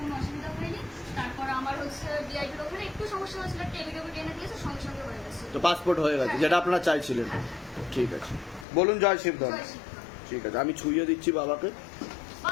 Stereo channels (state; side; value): drops out; right; at 8.7 s